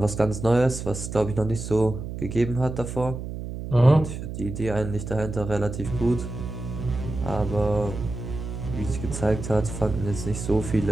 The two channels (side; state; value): right; noise; hum, 7 dB below the sound